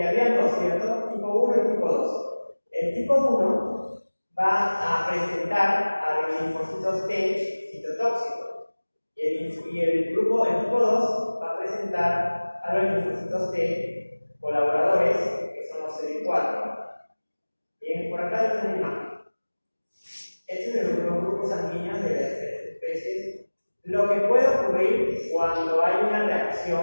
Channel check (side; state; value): both; inverted; correlation -1.00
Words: había dos, ¿cierto? Tipo 1 y tipo 2. El tipo 1 va a presentar a los linfocitos T citotóxicos. Y el tipo 2 va a presentar a los linfocitos T colaboradores, que son los CD4. Bien, por acá está una imagen. Estos son los grupos sanguíneos de las especies. Lo que puede ocurrir cuando hay una